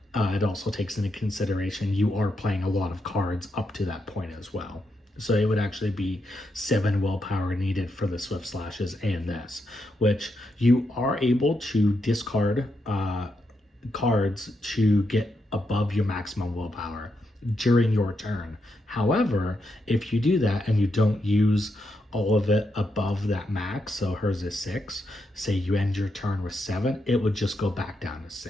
it also takes into consideration you are playing a lot of cards up to that point as well. So it would actually be 7 willpower needed for the Swift Slashes and this, which you are able to discard cards to get above your maximum willpower during your turn. However, if you do that and you don't use all of it above that max, so hers is 6, say you end your turn with 7, it would just go back down to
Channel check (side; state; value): both; normal; correlation 0.82